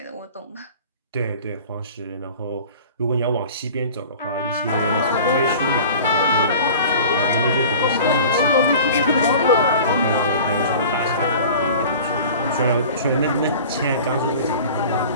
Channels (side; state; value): both; inverted; correlation -0.41